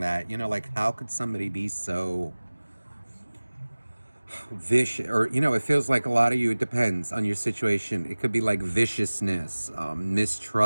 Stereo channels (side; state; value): both; inverted; correlation -1.00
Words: that, like how could somebody be so vicious? Or, it feels like a lot of you, it depends on your situation. It could be like viciousness,